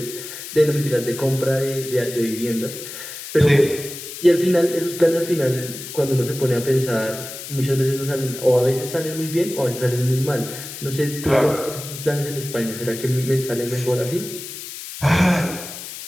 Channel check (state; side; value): noise; left; hiss, 10 dB below the sound